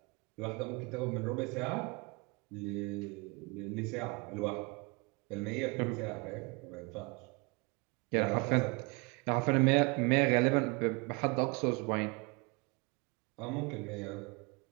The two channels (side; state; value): left; quieter; 29.0 dB